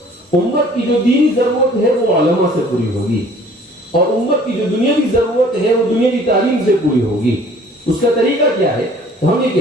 امت کی جو دینی ضرورت ہے وہ علماء سے پوری ہوگی، اور امت کی جو دنیاوی ضرورت ہے وہ دنیاوی تعلیم سے پوری ہوگی۔ اس کا طریقہ کیا ہے؟ ہم یہ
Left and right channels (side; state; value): both; normal; correlation 0.53